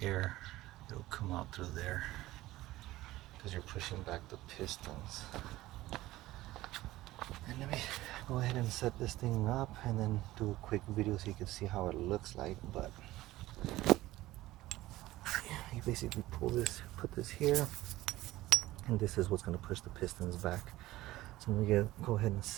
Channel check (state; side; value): quieter; left; 17.0 dB